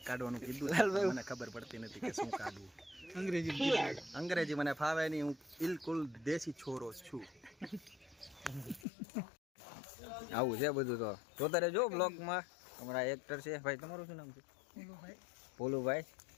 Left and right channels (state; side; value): drops out; right; at 8.8 s